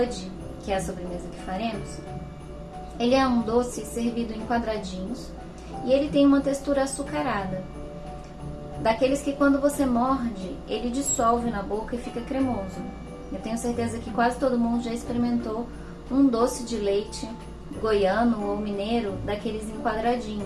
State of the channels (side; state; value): both; identical; correlation 1.00